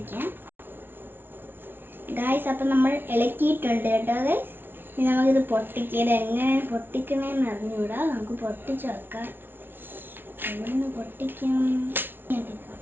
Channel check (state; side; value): late; left; 0.10 ms